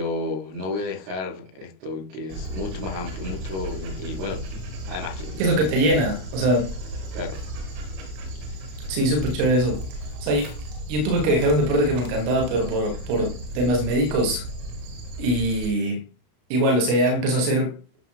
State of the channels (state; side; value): late; left; 33 ms